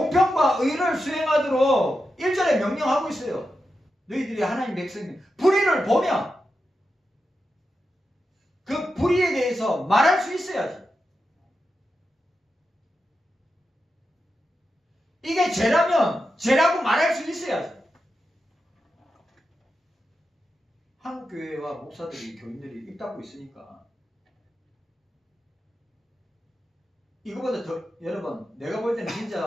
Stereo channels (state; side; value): normal; both; correlation 0.89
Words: 의를 수행하도록 1절에 명령하고 있어요. 너희들이 하나님 백성이면 불의를 보면 그 불의에 대해서 말할 수 있어야지. 이게 죄라면 죄라고 말할 수 있어야지. 한국교회와 목사들이 교인들이 입 닫고 있으니까 이거보다 더 여러분 내가 볼 때는